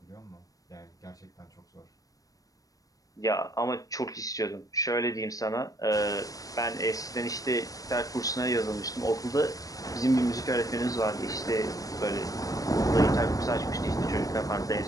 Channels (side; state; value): right; late; 0.17 ms